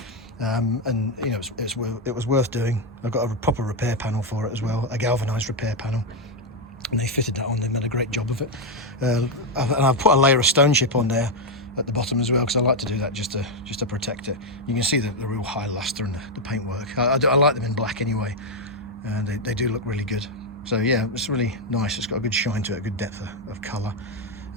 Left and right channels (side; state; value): both; normal; correlation 0.03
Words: And you know, it was worth doing. I got a proper repair panel for it as well, a galvanized repair panel, and they fitted that on. They made a great job of it. And I've put a layer of stone chip on there at the bottom as well, because I like to do that just to protect it. You can see the real high luster in the paintwork. I like them in black anyway, and they do look really good. So yeah, it's really nice. It's got a good shine to it, a good depth of colour.